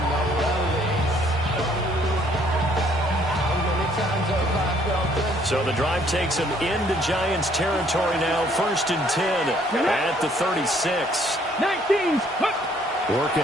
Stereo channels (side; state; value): both; normal; correlation 0.63